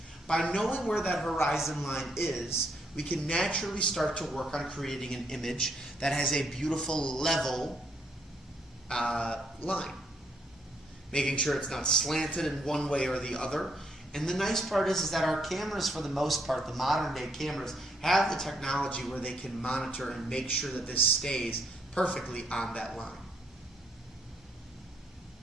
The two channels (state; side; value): normal; both; correlation 0.72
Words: By knowing where that horizon line is, we can naturally start to work on creating an image that has a beautiful level line. Making sure it's not slanted in one way or the other. And the nice part is that our cameras, for the most part, the modern day cameras, have the technology where they can monitor and make sure that this stays perfectly on that line.